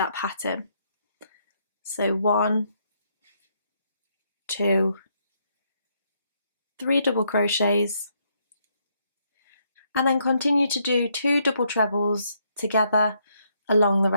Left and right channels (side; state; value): both; inverted; correlation -0.74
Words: pattern. So 1, 2, 3 double crochets, and then continue to do 2 double trebles together along the